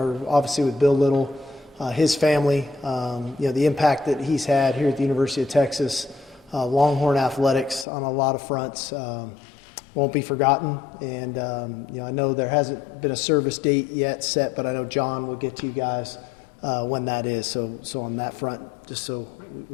obviously with Bill Little, his family. The impact that he's had here at the University of Texas, Longhorn athletics on a lot of fronts won't be forgotten. And I know there hasn't been a service date yet set, but I know John will get to you guys when that is. So on that front, just so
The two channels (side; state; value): right; drops out; at 7.9 s